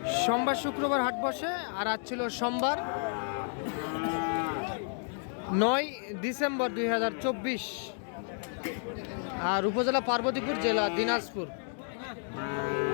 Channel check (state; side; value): silent; right; 57 dB below the other